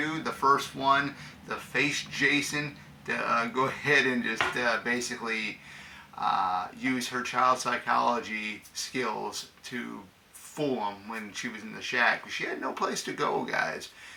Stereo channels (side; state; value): both; identical; correlation 1.00